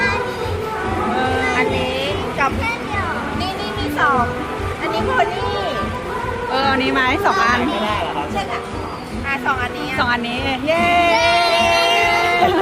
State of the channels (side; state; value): both; identical; correlation 1.00